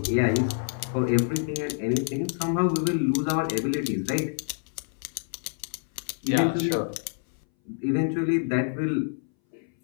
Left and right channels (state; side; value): silent; right; 60 dB below the other